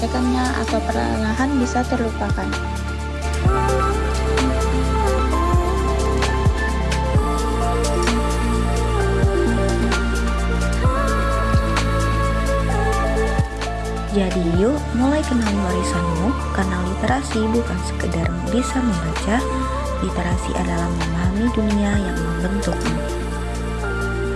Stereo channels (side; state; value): both; identical; correlation 1.00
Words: atau perlahan bisa terlupakan. Jadi yuk mulai kenali warisanmu, karena literasi bukan sekedar bisa membaca, literasi adalah memahami dunia yang membentukmu.